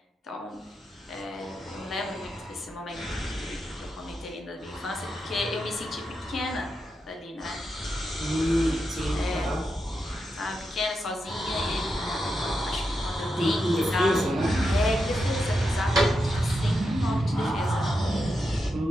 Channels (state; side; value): normal; both; correlation 0.86